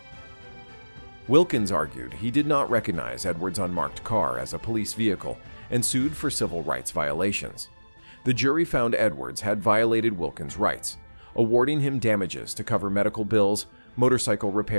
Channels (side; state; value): both; inverted; correlation -1.00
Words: Wilkins argued he did not recognize Edwards' unmarked car as a police vehicle and sued for civil rights violations. The jury found Edwards had violated Wilkins' rights, awarding him damages to cover medical bills, motorcycle